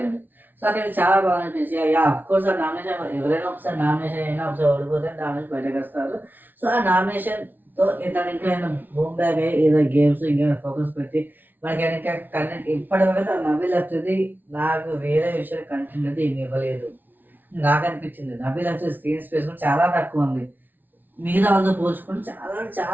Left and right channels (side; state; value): left; late; 0.087 ms